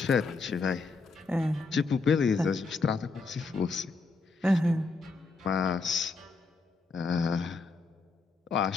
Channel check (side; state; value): right; quieter; 4.0 dB